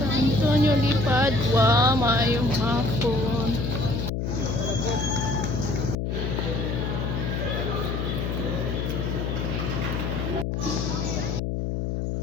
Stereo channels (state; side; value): noise; left; hum, 1 dB below the sound